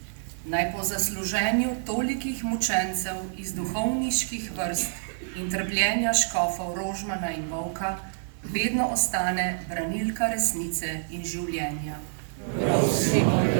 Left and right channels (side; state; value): left; silent; digital silence